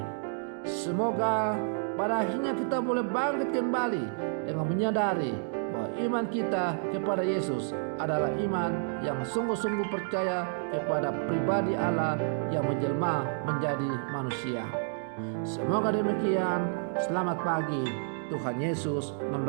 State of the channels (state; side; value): silent; left; digital silence